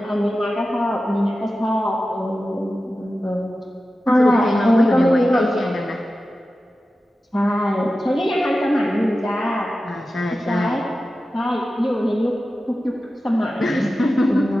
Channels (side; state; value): both; normal; correlation 0.94